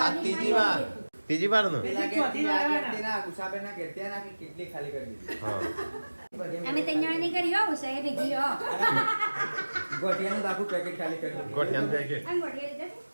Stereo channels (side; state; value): both; inverted; correlation -1.00